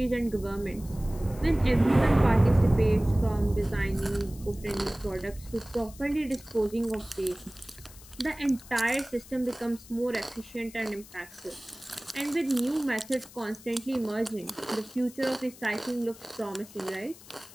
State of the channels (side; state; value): left; noise; hiss, 20 dB below the sound